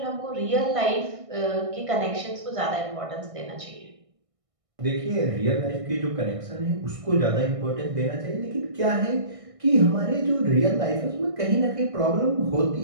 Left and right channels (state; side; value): late; left; 1.6 ms